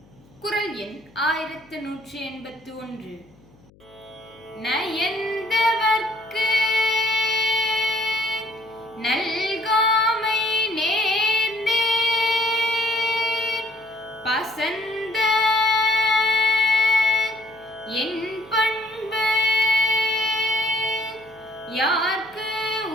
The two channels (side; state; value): left; noise; hum, 28 dB below the sound